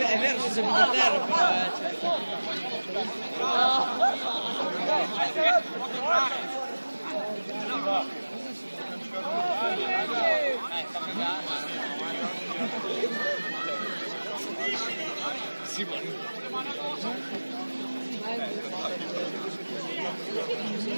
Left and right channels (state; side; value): inverted; both; correlation -1.00